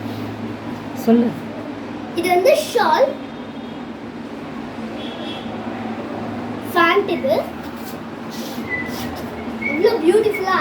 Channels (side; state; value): both; identical; correlation 1.00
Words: சொல்லு. இது வந்து ஷால் ஃபேண்ட். இவ்வளோ பியூட்டிஃபுல்லா